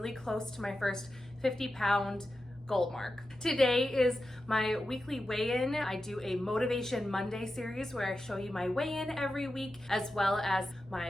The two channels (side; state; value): both; normal; correlation 0.91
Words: close to my first 50-pound goal mark. Today is my weekly weigh-in. I do a Motivation Monday series where I show you my weigh-in every week, as well as